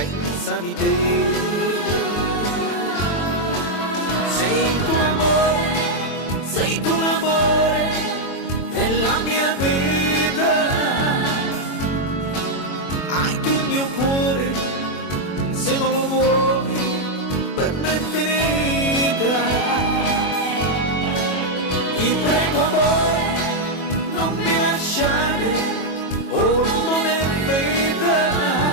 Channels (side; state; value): right; late; 22 ms